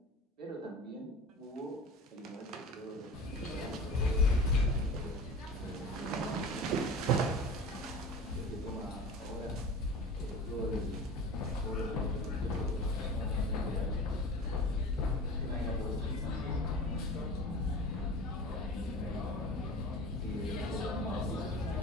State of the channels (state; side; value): normal; both; correlation 0.35